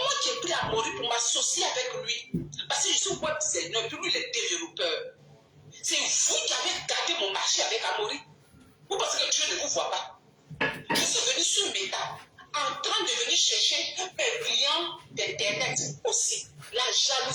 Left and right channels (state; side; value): identical; both; correlation 1.00